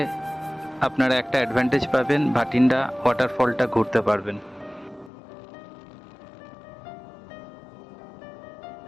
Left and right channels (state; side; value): drops out; right; at 5.1 s